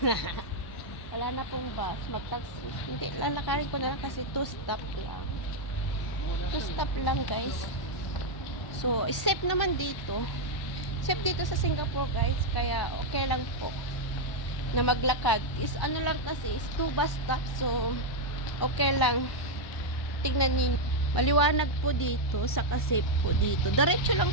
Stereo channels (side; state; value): right; late; 1.0 ms